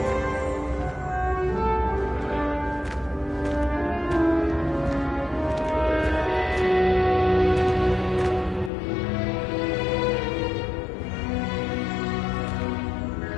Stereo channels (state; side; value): drops out; right; at 8.7 s